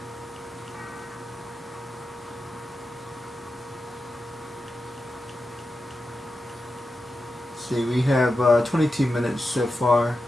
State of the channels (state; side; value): normal; both; correlation 0.90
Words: See, we have 22 minutes so far.